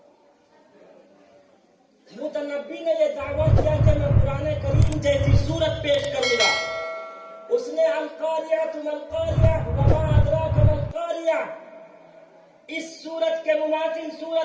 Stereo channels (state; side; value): identical; both; correlation 1.00